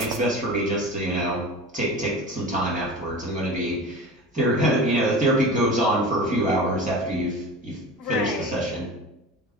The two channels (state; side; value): normal; both; correlation 0.33